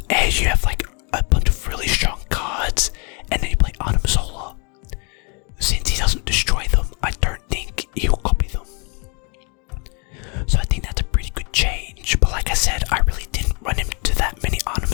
and you have like a bunch of really strong cards, and then you play Arnim Zola. Since he doesn't destroy them, I don't think he'll copy them. So I think that's a pretty good change. But like I said, I really didn't run into that many Arnim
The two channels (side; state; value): right; quieter; 34.5 dB